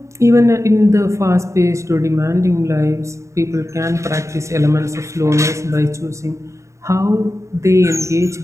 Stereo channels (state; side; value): late; left; 0.14 ms